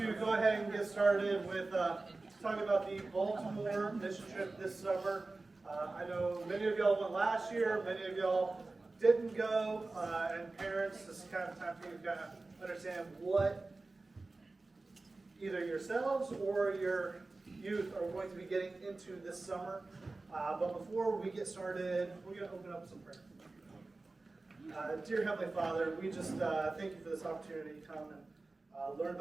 go ahead and get started with talking about the Baltimore mission trip this summer. I know many of y'all went last year, many of y'all didn't go, and parents, this is kind of time for you to kind of understand what either yourselves or your youth are going to be getting into this summer. But before we get started, we're going to open up some prayer. Dear Heavenly Father, we just thank you for this opportunity to come and learn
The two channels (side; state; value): left; quieter; 3.3 dB